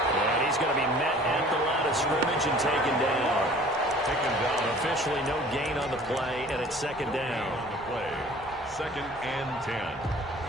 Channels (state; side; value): normal; both; correlation 0.49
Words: And he's going to be met at the line of scrimmage and taken down. Officially no gain on the play, and it's 2nd down. On the play, 2nd and 10